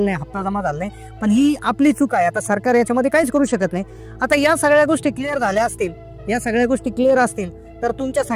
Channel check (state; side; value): identical; both; correlation 1.00